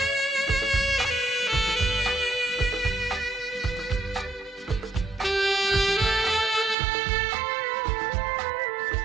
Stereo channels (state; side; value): drops out; left; at 6.8 s